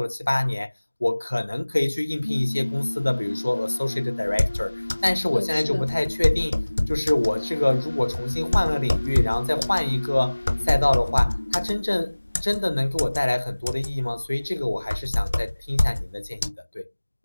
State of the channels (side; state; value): both; inverted; correlation -1.00